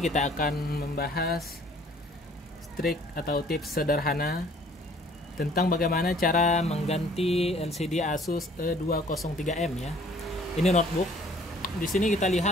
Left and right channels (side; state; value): both; normal; correlation 0.56